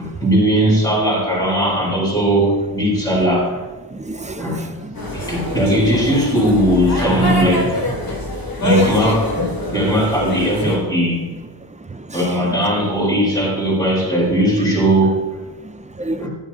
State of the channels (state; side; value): normal; both; correlation 0.34